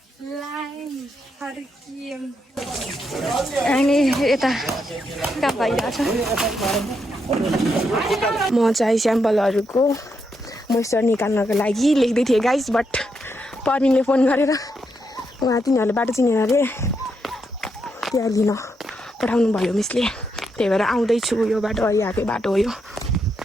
अनि यता काम भइरहेछ म चाहिँ स्याम्पलहरूको मोइस्चर निकाल्नको लागि लेख्दै थिएँ गाइस बट पर्मिनले फोन गरेर उहाँ तिनीहरूले बाटो चिनेर अरे त्यहाँ लिन पठाउनु भयो मिसले त्यही भएर आउँदैछु यो बाटो यहाँकै बाटो हो यो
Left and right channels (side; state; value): both; normal; correlation 0.80